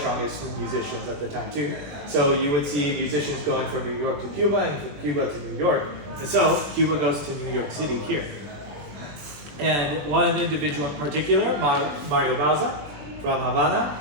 musicians at the time too. So you would see musicians going from New York to Cuba and from Cuba to New York, and so Cuba goes to New York City here. And one individual in particular, Mario Bauza from Havana.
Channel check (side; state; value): left; late; 20 ms